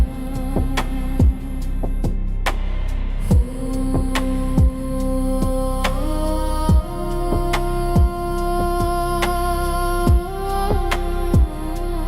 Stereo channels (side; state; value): both; identical; correlation 1.00